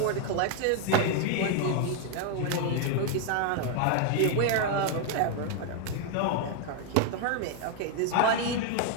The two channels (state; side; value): different; both; correlation 0.00